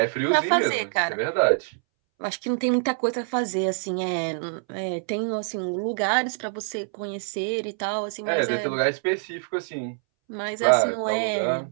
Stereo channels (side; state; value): left; silent; 61 dB below the other